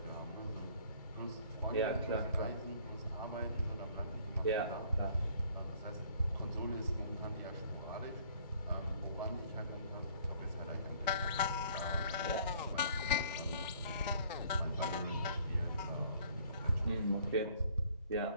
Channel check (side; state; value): both; inverted; correlation -0.58